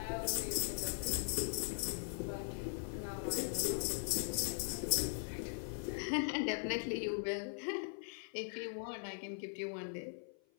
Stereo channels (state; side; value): silent; right; 51 dB below the other